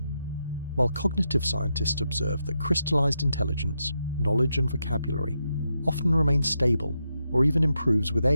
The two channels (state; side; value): inverted; both; correlation -0.84